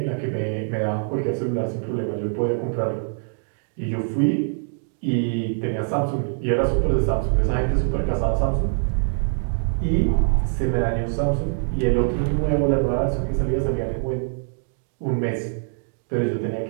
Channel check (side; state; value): left; silent; 63 dB below the other